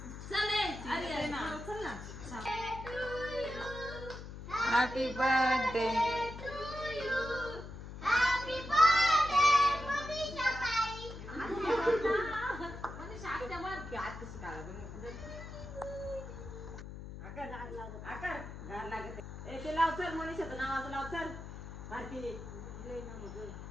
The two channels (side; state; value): left; noise; hum, 11 dB below the sound